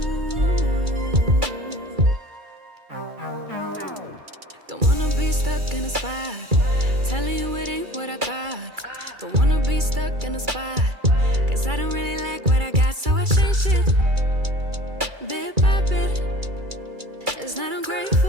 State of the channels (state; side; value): late; left; 2.3 ms